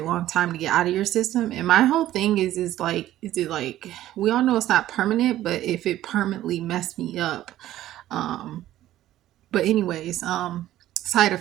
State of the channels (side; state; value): left; quieter; 13.7 dB